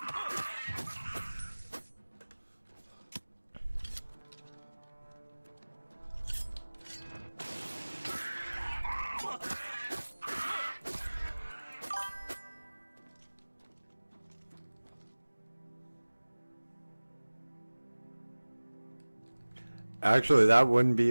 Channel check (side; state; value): both; inverted; correlation -1.00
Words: Actually, that wouldn't be